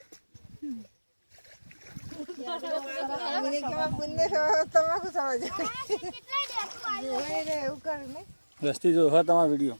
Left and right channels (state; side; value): inverted; both; correlation -1.00